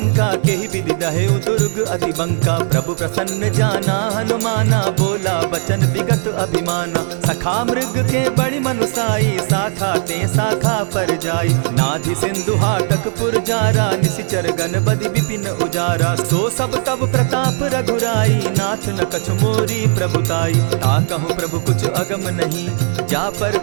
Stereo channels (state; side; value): silent; left; 65 dB below the other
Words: केहि विधि दहेउ दुर्ग अति बंका। प्रभु प्रसन्न जाना हनुमाना, बोला बचन विगत अभिमाना। सखा मृग के बड़ी मनुसाई, साखा ते शाखा पर जाई। नाधि सिंधु हाटक पुर जारा, निशिचर गण बदि विपिन उजारा। सो सब तब प्रताप रघुराई, नाथ न कछु मोरी प्रभुताई। ताकहु प्रभु कुछ अगम नहीं, जा पर